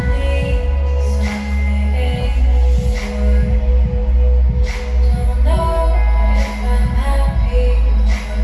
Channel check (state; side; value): identical; both; correlation 1.00